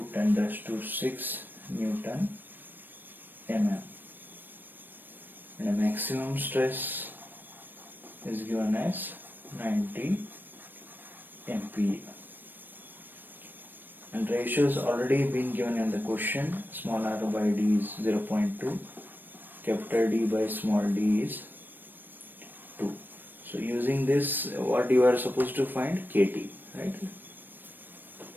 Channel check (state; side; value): late; left; 0.093 ms